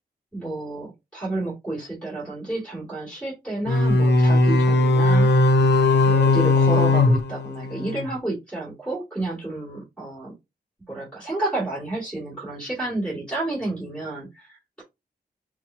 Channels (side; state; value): both; normal; correlation 0.59